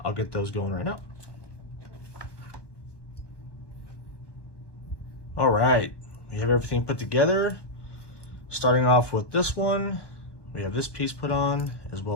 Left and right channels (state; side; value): late; right; 1.1 ms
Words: I'll get those going right now. All right, we have everything put together. Starting off with this one, we have this piece put on, as